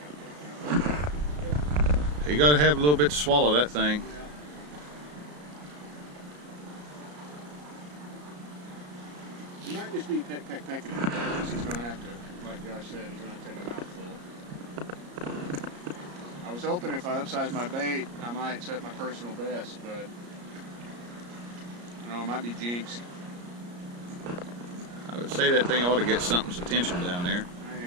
You got to have a little bit to swallow that thing. He might just be pecking it because he's going to have to, like Josh said, he's going to take a mouthful. I was hoping if I upsize my bait, I might set my personal best, but I might be jinxed. I would say that thing ought to get something's attention down there.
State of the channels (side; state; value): left; late; 34 ms